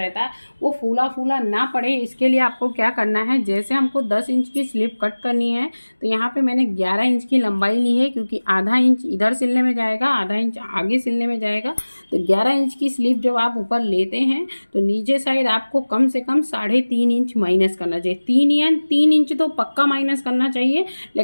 है, वो फूला फूला ना पड़े, इसके लिए आपको क्या करना है, जैसे हमको 10 इंच की स्लीव कट करनी है तो यहाँ पे मैंने 11 इंच की लंबाई ली है, क्योंकि आधा इंच इधर सिलने में जाएगा, आधा इंच आगे सिलने में जाएगा। तो 11 इंच की स्लीव जब आप ऊपर लेते हैं तो नीचे साइड आपको कम से कम 3.5 इंच माइनस करना चाहिए। 3 इंच तो पक्का माइनस करना चाहिए,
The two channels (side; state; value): both; inverted; correlation -1.00